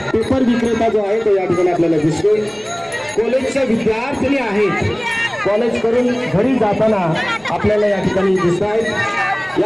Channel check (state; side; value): noise; left; rumble, 30 dB below the sound